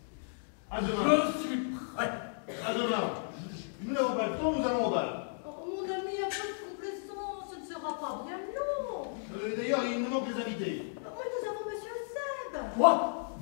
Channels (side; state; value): right; silent; digital silence